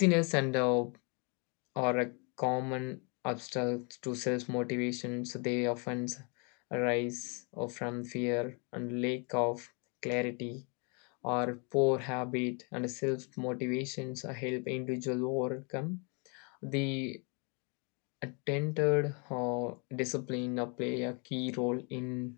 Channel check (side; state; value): right; quieter; 34.6 dB